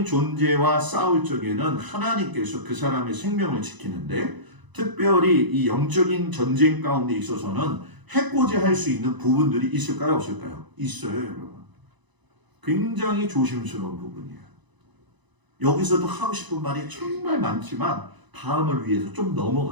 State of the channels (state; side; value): late; left; 1.0 ms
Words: 존재와 싸울 적에는 하나님께서 그 사람의 생명을 지키는데 특별히 이 영적인 전쟁 가운데 있어서는 해코지할 수 있는 부분들이 있을까요? 없을까요? 있어요, 여러분. 굉장히 조심스러운 부분이에요. 여기서도 하고 싶은 말이 정말 많지만 다음을 위해서 좀